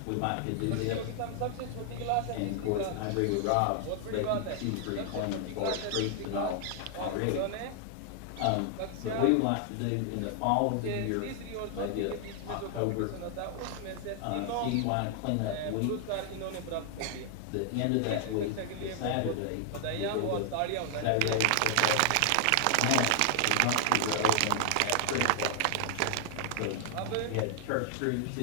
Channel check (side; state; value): both; different; correlation 0.00